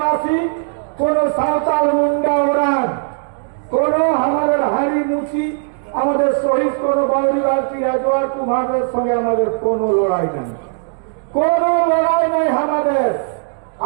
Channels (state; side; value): silent; left; digital silence